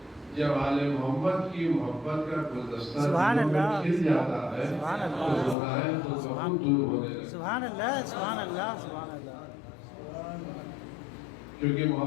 جب آل محمد کی محبت کا گلدستہ سبحان اللہ کھل جاتا ہے سبحان تو اللہ گناہ تو بہت دور ہونے لگتے ہیں سبحان اللہ سبحان اللہ سبحان اللہ کیونکہ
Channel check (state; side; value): drops out; right; at 5.6 s